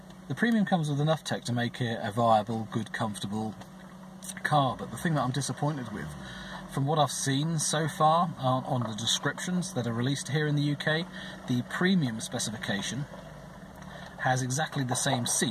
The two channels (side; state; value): both; identical; correlation 1.00